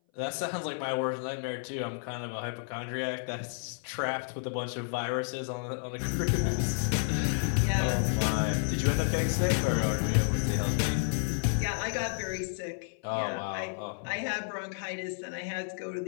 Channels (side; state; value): right; silent; 57 dB below the other